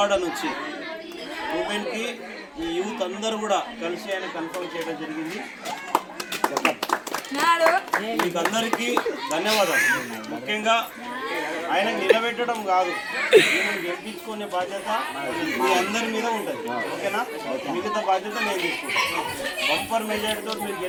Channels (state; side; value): identical; both; correlation 1.00